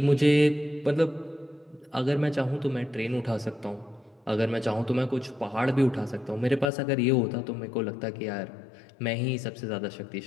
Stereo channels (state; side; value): drops out; right; at 6.7 s